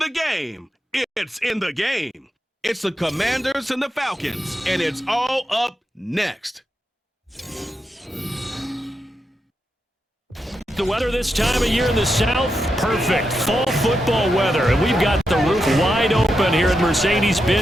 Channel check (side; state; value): both; normal; correlation 0.86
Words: game, it's in the game. It's the Commanders and the Falcons, and it's all up next. The weather this time of year in the South, perfect. Fall football weather, and we've got the roof wide open here at